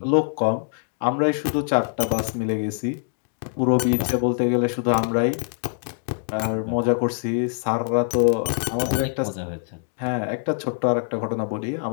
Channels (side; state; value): right; silent; digital silence